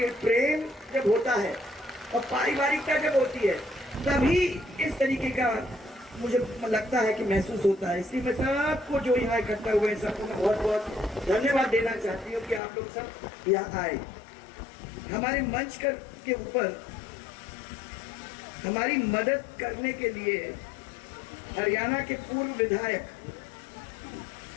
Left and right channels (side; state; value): right; drops out; at 12.6 s